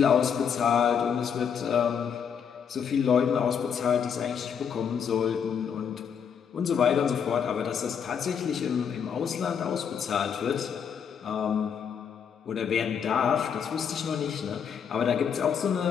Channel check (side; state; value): right; quieter; 7.4 dB